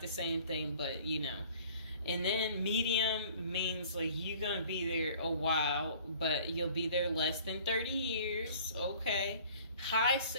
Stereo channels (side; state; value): both; inverted; correlation -0.51